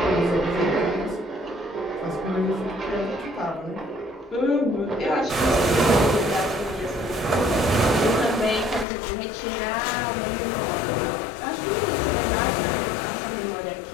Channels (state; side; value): drops out; right; at 8.8 s